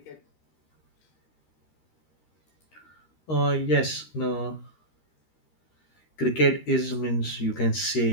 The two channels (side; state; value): right; late; 13 ms